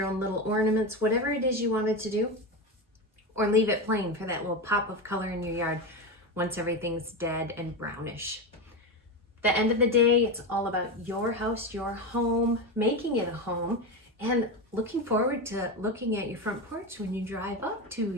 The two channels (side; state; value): both; normal; correlation 0.17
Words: own little ornaments, whatever it is you wanted to do, or leave it plain for that little pop of color in your yard once everything's dead and brownish. The end of the day, it's all about your house, your home, making it a home, and looking forward to looking at your front porch when you drive up to